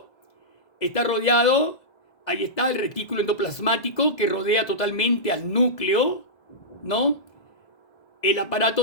Está rodeado, ahí está el retículo endoplasmático que rodea totalmente al núcleo, ¿no? El aparato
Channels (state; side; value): late; right; 2.0 ms